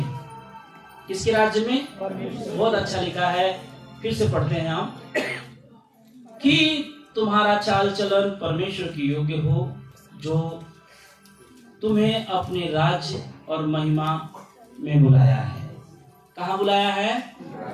किसके राज्य में? बहुत अच्छा लिखा है, फिर से पढ़ते हैं हम, कि तुम्हारा चाल चलन परमेश्वर की योग्य हो, जो तुम्हें अपने राज्य और महिमा में बुलाया है। कहाँ बुलाया है?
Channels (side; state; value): both; identical; correlation 1.00